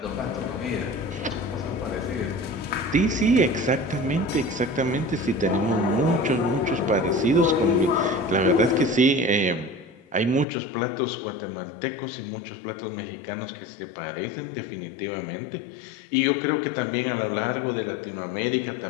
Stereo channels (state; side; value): drops out; right; at 10.5 s